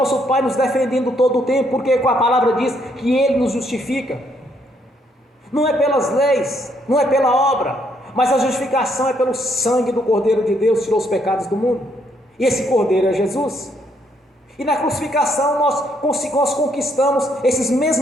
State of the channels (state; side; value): normal; both; correlation 0.72